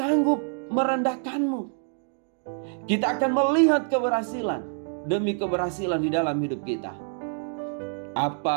merendahkanmu. Kita akan melihat keberhasilan demi keberhasilan di dalam hidup kita.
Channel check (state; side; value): silent; left; 55 dB below the other